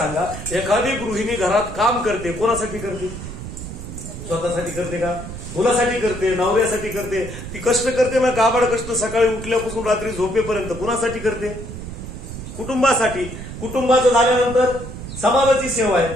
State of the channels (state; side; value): noise; right; rumble, 10 dB below the sound